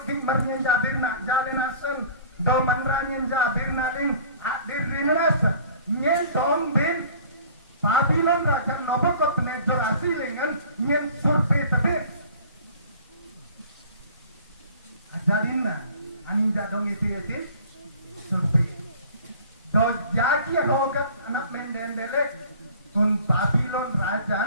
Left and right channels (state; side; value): inverted; both; correlation -0.48